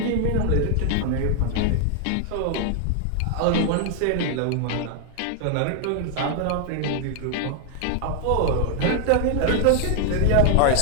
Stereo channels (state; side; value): different; both; correlation 0.00